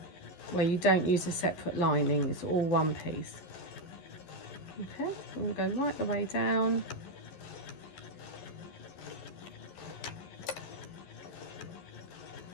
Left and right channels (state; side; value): late; right; 11 ms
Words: where you don't use a separate lining, it's all one piece. Okay, I'm going to go right the way down.